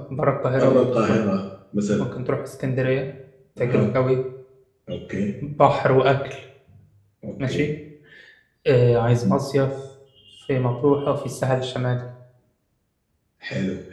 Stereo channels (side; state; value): both; identical; correlation 1.00